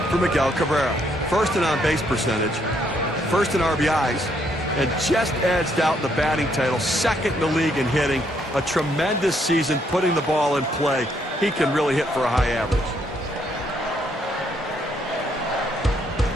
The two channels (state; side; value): normal; both; correlation 0.72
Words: for Miguel Cabrera. First in on-base percentage, first in RBIs, and just edged out the batting title, second in the league in hitting. A tremendous season putting the ball in play. He can really hit for a high average.